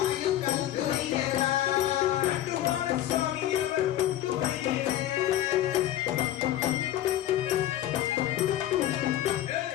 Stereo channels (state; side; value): quieter; right; 12.8 dB